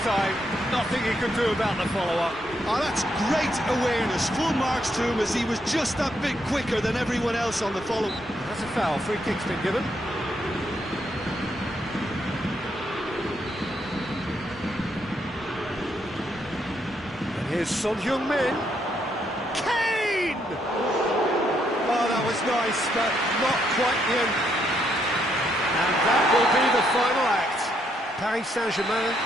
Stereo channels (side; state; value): both; normal; correlation 0.76